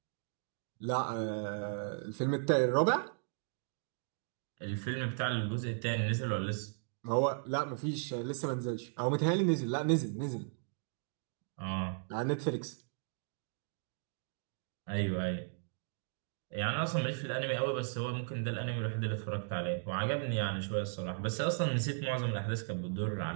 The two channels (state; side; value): silent; left; digital silence